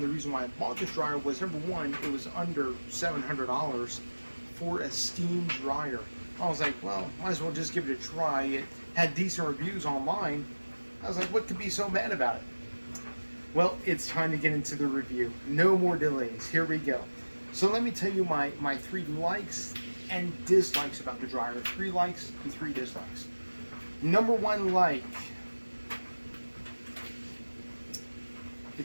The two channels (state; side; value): inverted; both; correlation -1.00